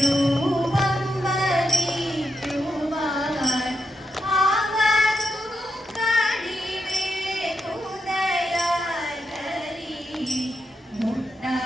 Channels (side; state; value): both; normal; correlation 0.84